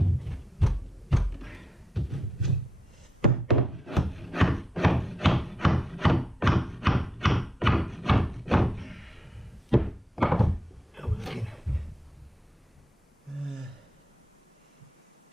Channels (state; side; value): normal; both; correlation 0.82